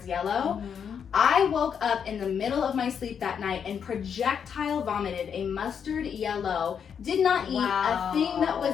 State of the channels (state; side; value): quieter; right; 7.4 dB